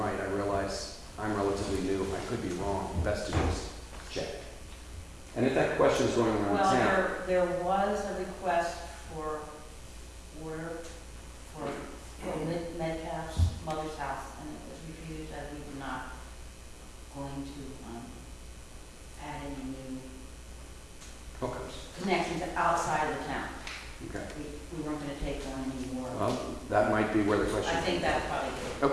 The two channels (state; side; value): identical; both; correlation 1.00